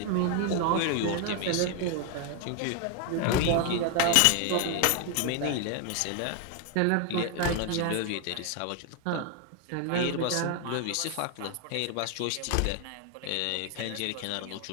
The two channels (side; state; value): both; different; correlation 0.00